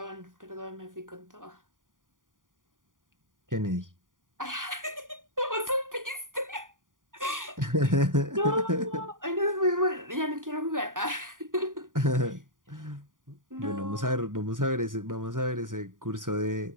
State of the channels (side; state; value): left; late; 0.89 ms